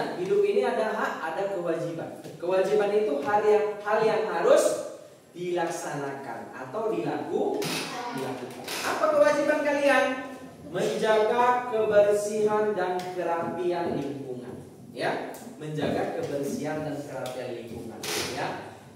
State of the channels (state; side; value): identical; both; correlation 1.00